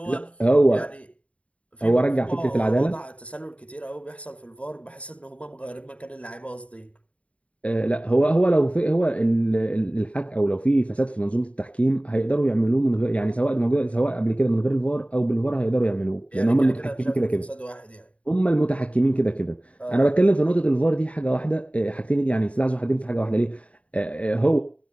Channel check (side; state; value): right; late; 0.064 ms